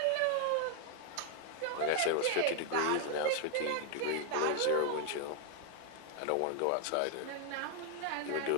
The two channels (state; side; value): different; both; correlation 0.00